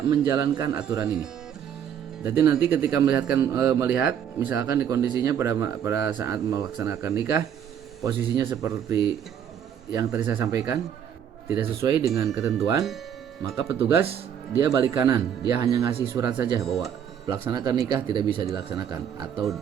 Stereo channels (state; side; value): quieter; left; 8.8 dB